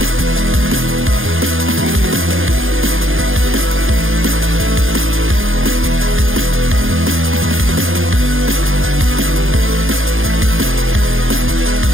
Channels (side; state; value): left; late; 0.59 ms